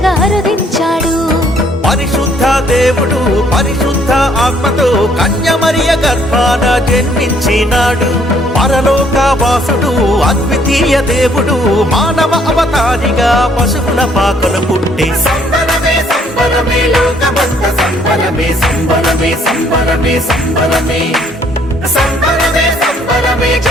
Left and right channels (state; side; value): normal; both; correlation 0.64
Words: అరుదించాడు. పరిశుద్ధ దేవుడు పరిశుద్ధ ఆత్మతో కన్యమరియ గర్భాన జన్మించినాడు. పరలోక వాసుడు అద్వితీయ దేవుడు మానవ అవతారిగా పశువుల పాకలు పుట్టి సంబరమే సంబరమే లోకమంత సంబరమే సంబరమే సంబరమే సంబరమే సంబరమే సంబరమే